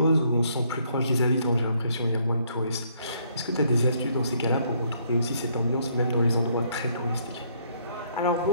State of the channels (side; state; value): both; inverted; correlation -0.68